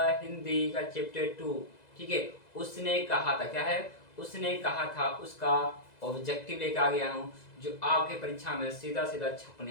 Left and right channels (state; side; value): late; right; 2.0 ms